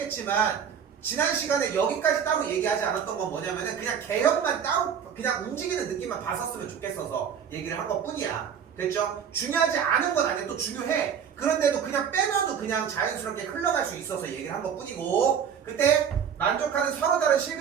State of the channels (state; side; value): quieter; left; 7.7 dB